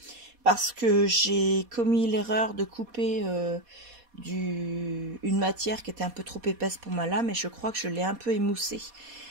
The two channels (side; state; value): left; late; 4.2 ms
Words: parce que j'ai commis l'erreur de couper une matière qui était un peu trop épaisse pour ma lame et je crois que je l'ai un peu émoussée.